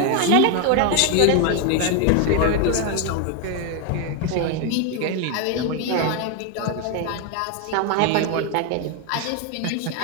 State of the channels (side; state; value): both; different; correlation 0.01